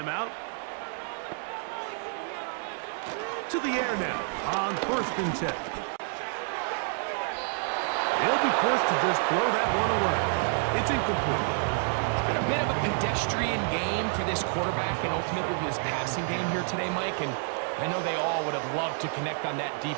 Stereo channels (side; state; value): left; silent; 58 dB below the other